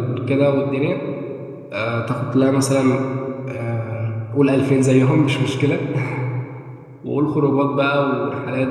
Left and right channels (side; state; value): both; identical; correlation 1.00